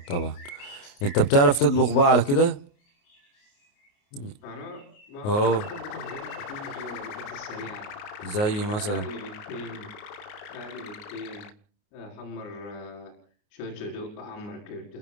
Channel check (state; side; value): late; right; 28 ms